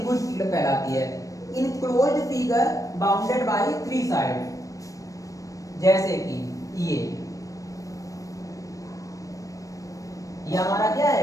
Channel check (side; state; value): right; late; 0.16 ms